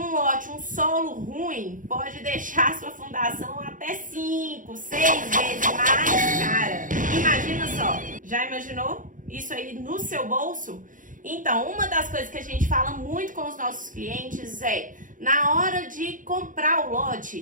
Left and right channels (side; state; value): left; late; 0.38 ms